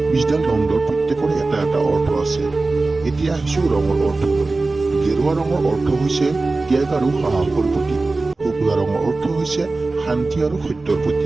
দণ্ডৰ প্ৰত্যেকৰে এটা এটা অৰ্থ আছে। এতিয়া আহিছোঁ ৰঙৰ অৰ্থলৈ। গেৰুৱা ৰঙৰ অৰ্থ হৈছে ত্যাগ আৰু সাহসৰ প্ৰতীক। শুকুলা ৰঙৰ অৰ্থ হৈছে শান্তি আৰু সত্যৰ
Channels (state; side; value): quieter; left; 3.4 dB